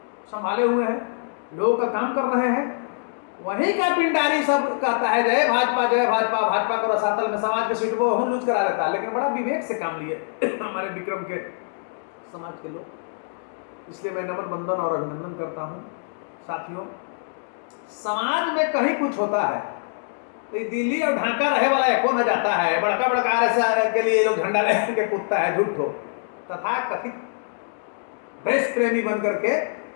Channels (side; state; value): right; silent; digital silence